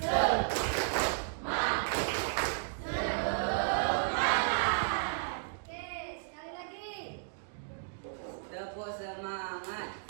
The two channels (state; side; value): silent; left; digital silence